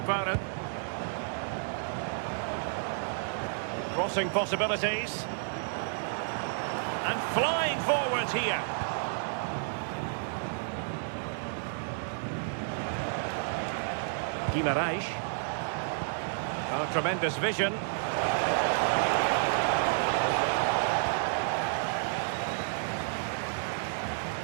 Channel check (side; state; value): left; silent; digital silence